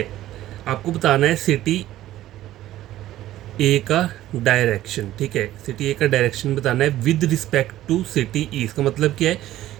आपको बताना है city ए का direction. ठीक है, city ए का direction बताना है विद रिस्पेक्ट टू सिटी ई। इसका मतलब क्या है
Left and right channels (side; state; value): left; quieter; 14.1 dB